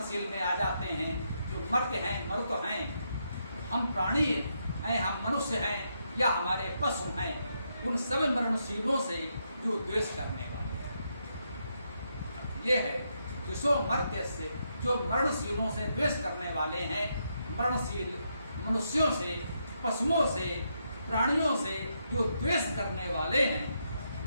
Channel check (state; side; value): inverted; both; correlation -0.80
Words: में आ जाते हैं। जो मर्त्य हैं, मरुत हैं, हम प्राणी हैं, हम मनुष्य हैं या हमारे पशु हैं, उन सब मरणशीलों से जो द्वेष करने वाले हैं। ये है द्वेषो मर्त्यस्य, जो मरणशीलों से द्वेष करने वाले हैं। मरणशील मनुष्यों से, पशुओं से, प्राणियों से जो द्वेष करने वाले हैं,